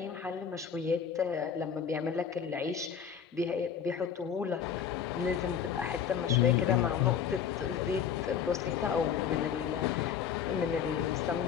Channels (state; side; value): quieter; right; 7.8 dB